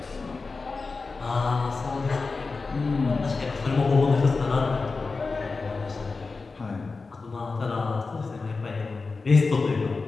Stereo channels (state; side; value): quieter; right; 4.1 dB